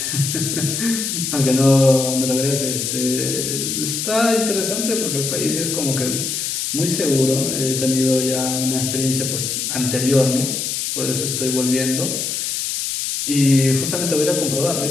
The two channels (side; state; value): left; noise; hiss, 2 dB below the sound